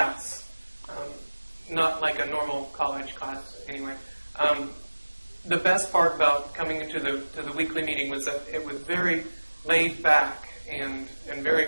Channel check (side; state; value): both; inverted; correlation -1.00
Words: not like a normal college class anyway. The best part about coming into the weekly meeting was that it was very laid back and very